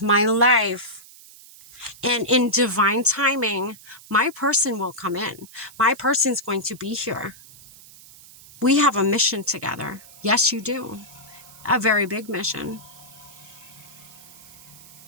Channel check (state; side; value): noise; right; hiss, 21 dB below the sound